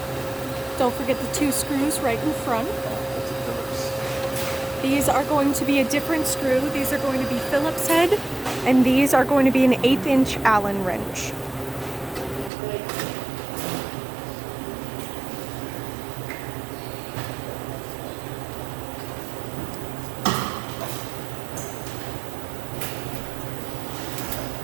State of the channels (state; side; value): drops out; left; at 12.5 s